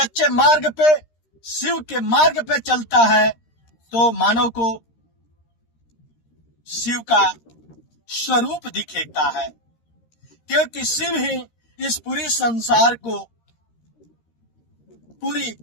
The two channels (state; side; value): late; right; 13 ms